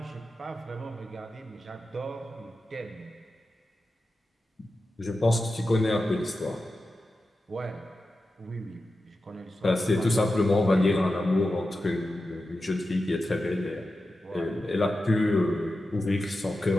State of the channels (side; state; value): both; normal; correlation 0.92